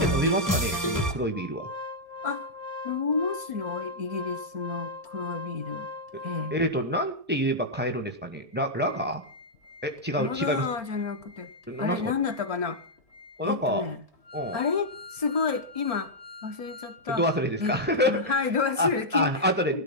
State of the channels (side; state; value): left; late; 1.7 ms